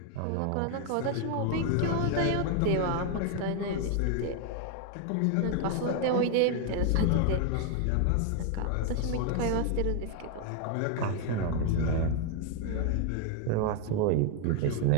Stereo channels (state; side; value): different; both; correlation 0.01